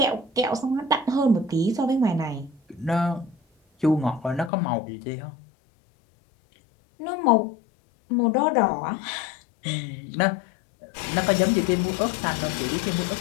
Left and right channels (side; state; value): right; drops out; at 4.5 s